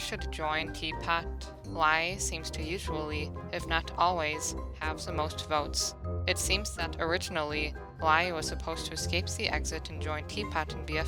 join TPOT, Lai seems to usually, if not always, have the most votes. It seems that originally, Lai was supposed to escape the exit and join TPOT in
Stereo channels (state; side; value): identical; both; correlation 1.00